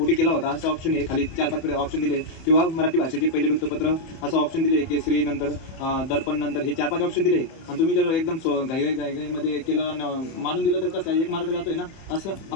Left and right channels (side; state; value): right; late; 31 ms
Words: केला होता असा ऑप्शन आहे, खाली 4-5 ऑप्शन दिले. किंवा मराठी भाषेचे पहिले वृत्तपत्र असं ऑप्शन दिले, केसरी नंतर दर्पण नंतर हे 4-5 ऑप्शन दिले. आणि तुम्ही जर एकदम घाईमध्ये केलं मानून दिलं तर कसं 1 मार्क जातोय ना. असं